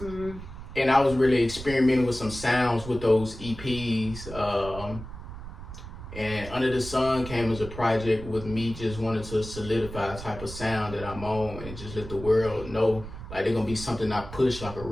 and I was really experimenting with some sounds with those EPs. And Under the Sun came as a project with me just wanting to solidify a type of sound that I'm on and just let the world know like they're gonna be something I push, like a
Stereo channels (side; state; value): right; noise; rumble, 12 dB below the sound